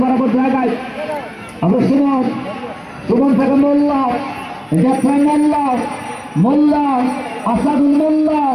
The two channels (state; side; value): identical; both; correlation 1.00